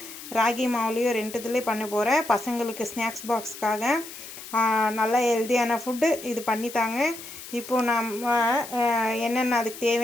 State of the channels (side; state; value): left; noise; hiss, 13 dB below the sound